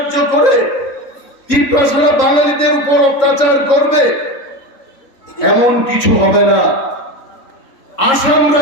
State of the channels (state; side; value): late; right; 3.7 ms